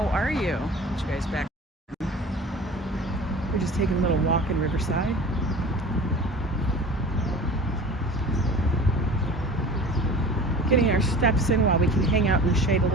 are you? Get you guys back. We're just taking a little walk in Riverside. Getting our steps in while we can hang out in the shade a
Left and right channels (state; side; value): normal; both; correlation 0.40